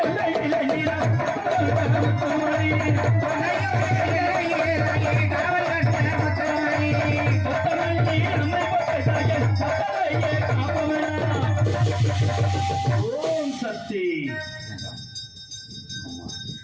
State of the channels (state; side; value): identical; both; correlation 1.00